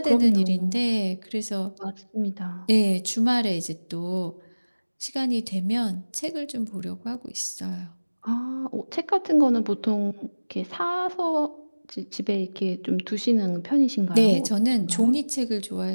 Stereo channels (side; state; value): both; inverted; correlation -1.00